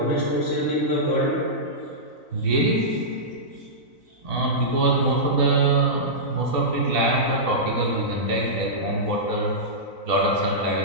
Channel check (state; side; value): late; right; 4.0 ms